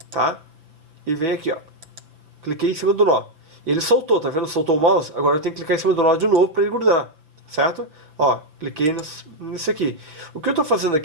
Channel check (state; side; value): late; left; 6.4 ms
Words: tá? E venho aqui, ó. Cliquei em cima do nó. Ele soltou, tá vendo? Soltou o mouse. Agora eu tenho que clicar em cima do nó de novo para ele grudar, certo? Ó, cliquei nisso aqui. O que eu tô fazendo